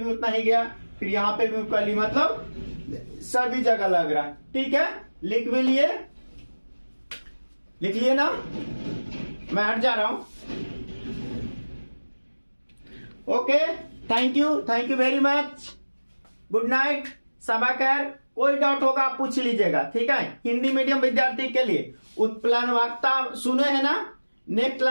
उतना ही गया, फिर यहां पे भी कर ली, मतलब सभी जगह लग रहा है, ठीक है। लिख भी लिए, लिख लिए ना? मैं हट जा रहा हूं। Okay, thank you very much, good night, सबा खैर। कोई डाउट होगा आप पूछ लीजिएगा, ठीक है। हिंदी मीडियम विद्यार्थी के लिए उत्प्लवनता सुने हैं ना, नेक्स्ट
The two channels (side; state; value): both; inverted; correlation -1.00